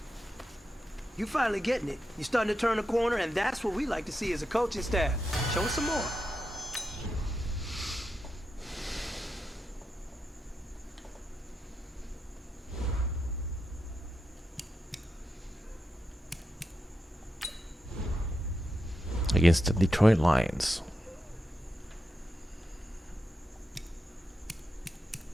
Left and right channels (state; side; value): normal; both; correlation 0.87